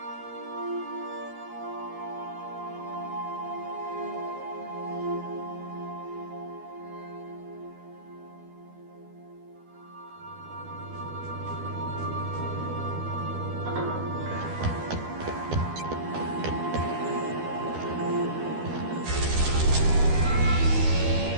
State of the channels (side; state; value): left; late; 12 ms